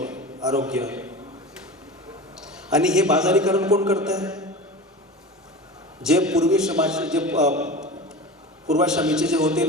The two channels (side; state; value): both; normal; correlation 0.31